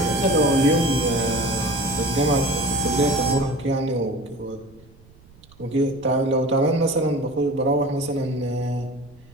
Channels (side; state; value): right; noise; rumble, 25 dB below the sound